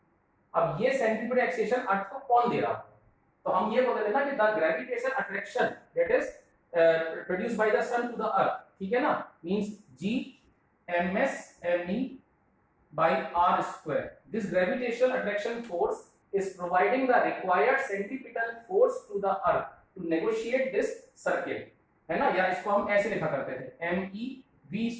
अब ये सेंट्रीपिटल एक्सेलरेशन अर्थ को कौन दे रहा है, तो हम ये बोल रहे थे ना कि the gravitation attraction that is produced by the sun to the earth, ठीक है ना, means g ms me by r square. This gravitational attraction force is providing the required centripetal force to the earth to negotiate this circle, है ना, या इसको हम ऐसे लिखा करते थे me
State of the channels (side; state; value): both; identical; correlation 1.00